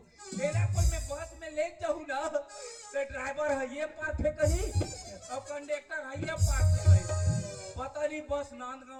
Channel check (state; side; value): identical; both; correlation 1.00